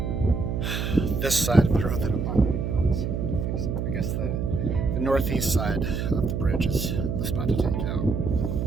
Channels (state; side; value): noise; right; hum, 1 dB below the sound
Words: this side of the road that I'm on. I guess the northeast side of the bridge is the spot to take out.